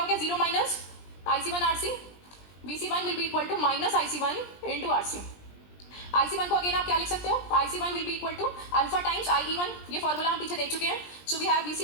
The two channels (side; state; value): right; late; 20 ms